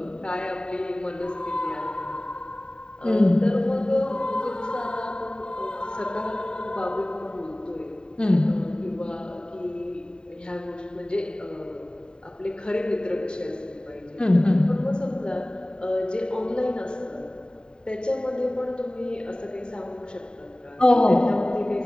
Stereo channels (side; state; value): right; late; 0.048 ms